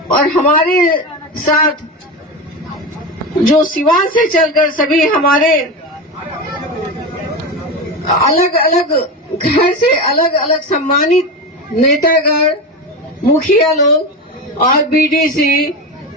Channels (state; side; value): normal; both; correlation 0.21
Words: और हमारे साथ जो सिवान से चलकर सभी हमारे अलग अलग घर से अलग अलग सम्मानित नेतागण, मुखिया लोग और बीडीसी,